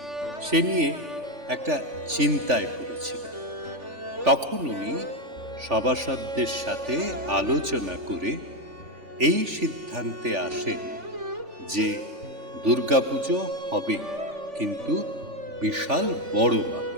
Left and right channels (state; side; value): late; left; 3.4 ms